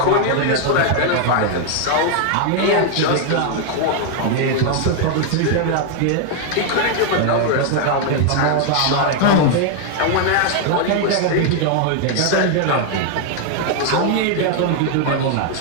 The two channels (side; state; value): both; different; correlation 0.00